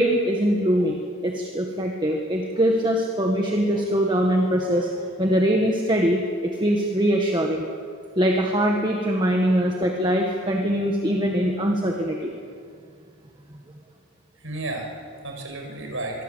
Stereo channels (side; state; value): both; normal; correlation 0.64